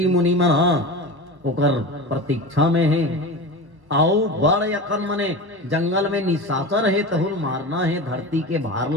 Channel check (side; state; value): left; late; 1.1 ms